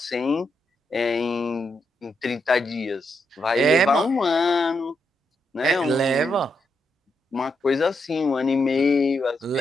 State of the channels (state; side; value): normal; both; correlation 0.82